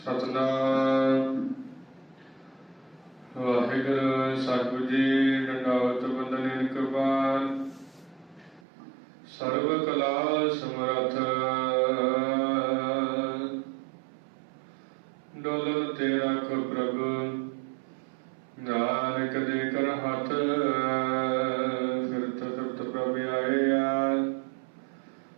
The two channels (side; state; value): left; drops out; at 8.7 s